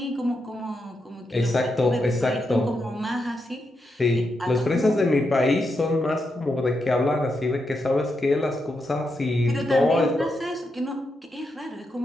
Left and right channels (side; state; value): both; normal; correlation 0.84